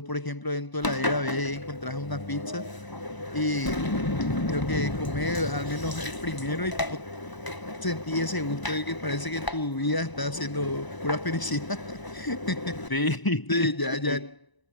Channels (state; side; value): late; right; 1.0 ms